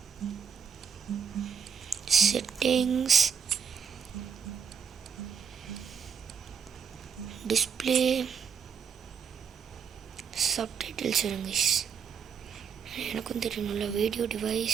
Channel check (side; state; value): left; quieter; 7.0 dB